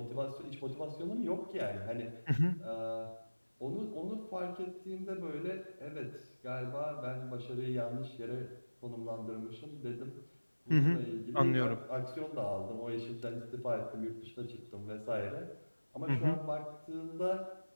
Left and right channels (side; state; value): both; inverted; correlation -1.00